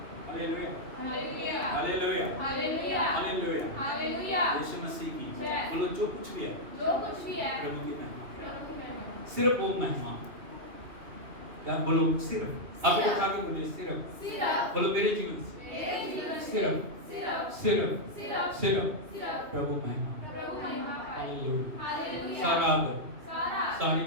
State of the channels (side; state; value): left; late; 2.8 ms